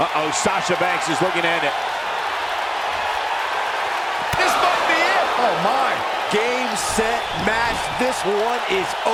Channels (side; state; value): both; identical; correlation 1.00